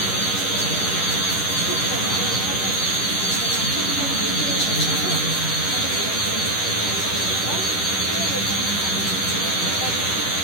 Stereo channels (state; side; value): late; right; 10 ms